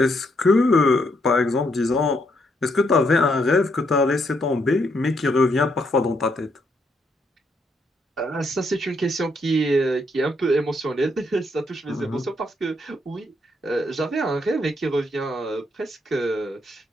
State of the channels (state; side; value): normal; both; correlation 0.75